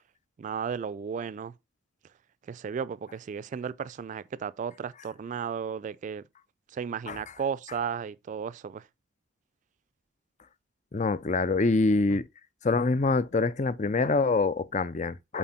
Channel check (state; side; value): normal; both; correlation 0.35